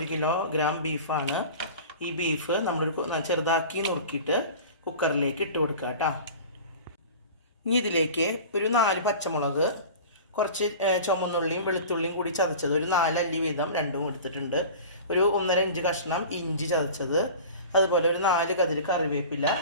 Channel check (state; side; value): inverted; both; correlation -0.37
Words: കിലോഗ്രാം ബീഫാണ്. ഈ ബീഫ് നമ്മളൊരു ചെറുതാക്കി നുറുക്കിയിട്ട് കുക്കറിലേക്ക് ഇട്ട് കൊടുക്കുക കേട്ടോ. ഇനി ഇതിലേക്ക് ഒരു 4 പച്ചമുളക്, കുറച്ച് ചുമന്നുള്ളിയും വെളുത്തുള്ളിയും കൂടി ചതച്ചത് ഒരു 4 അല്ലി വീതം രണ്ടും എടുത്തിട്ടുണ്ട്. ഒരു 1.5 ഇഞ്ച് കഷ്ണം ഇഞ്ചി ചതച്ചത്, അതുപോലെ ഒരു 4 കതിര് കറിവേപ്പില,